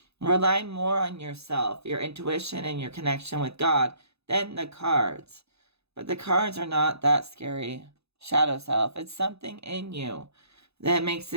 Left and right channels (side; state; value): left; late; 0.79 ms